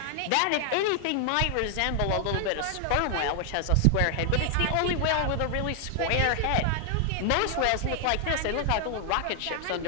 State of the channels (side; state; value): both; different; correlation 0.00